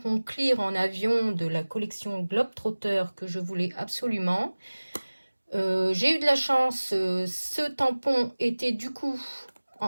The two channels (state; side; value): inverted; both; correlation -1.00